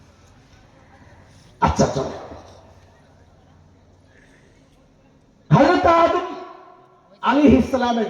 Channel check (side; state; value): both; identical; correlation 1.00